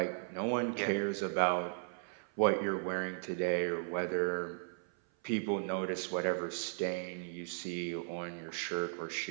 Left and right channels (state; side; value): silent; left; 54 dB below the other